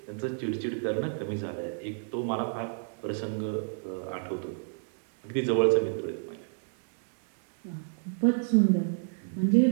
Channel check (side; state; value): left; silent; digital silence